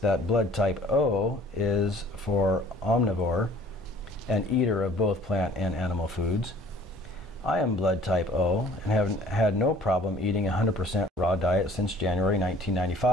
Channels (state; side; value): normal; both; correlation 0.52